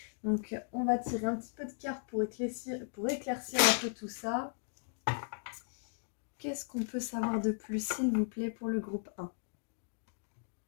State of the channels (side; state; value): right; silent; digital silence